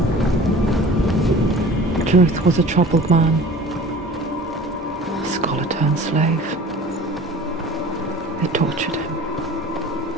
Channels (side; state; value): both; normal; correlation 0.43